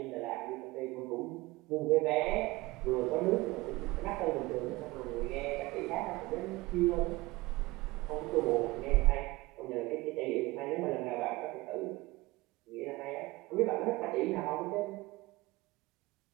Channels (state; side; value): quieter; left; 21.0 dB